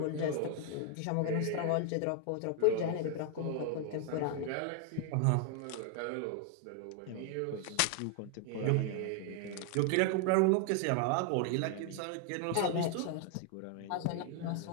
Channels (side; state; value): both; different; correlation 0.00